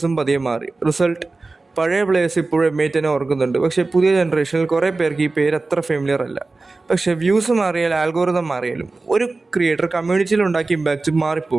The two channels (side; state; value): left; quieter; 3.5 dB